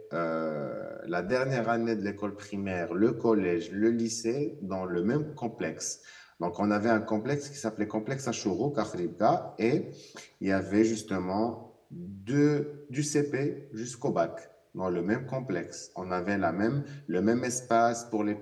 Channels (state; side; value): identical; both; correlation 1.00